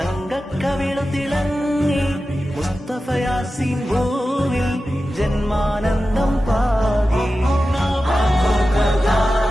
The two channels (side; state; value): both; normal; correlation 0.93